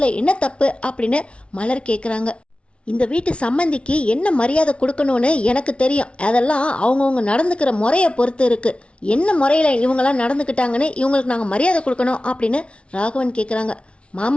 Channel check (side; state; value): right; late; 0.060 ms